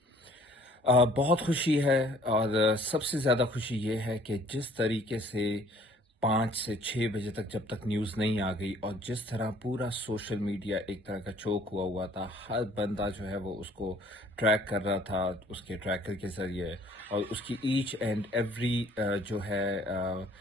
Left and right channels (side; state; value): both; normal; correlation 0.57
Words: بہت خوشی ہے اور سب سے زیادہ خوشی یہ ہے کہ جس طریقے سے 5 سے 6 بجے تک جب تک نیوز نہیں آ گئی اور جس طرح پورا سوشل میڈیا ایک طرح کا چوک ہوا تھا، ہر بندہ جو ہے وہ اس کو ٹریک کر رہا تھا اس کے ٹریکر کے ذریعے، اور اس کی ایچ اینڈ ایوری جو ہے